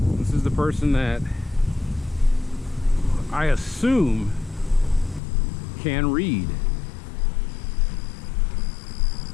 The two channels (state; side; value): drops out; right; at 5.2 s